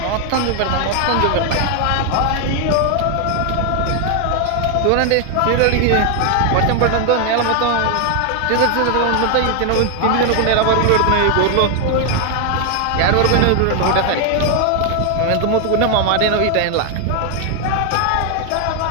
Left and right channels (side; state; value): both; different; correlation 0.01